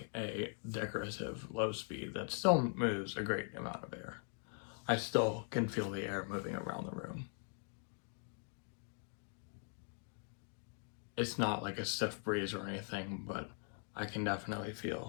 a decorative low speed that still moves a great amount of air. I still can feel the air moving around the room. It's not like a stiff breeze or anything, but I can definitely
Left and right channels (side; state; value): right; silent; 50 dB below the other